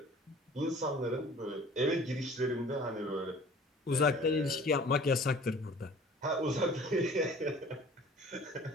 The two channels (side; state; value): both; normal; correlation 0.48